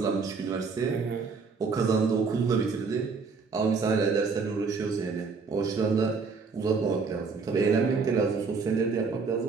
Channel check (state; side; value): quieter; left; 4.8 dB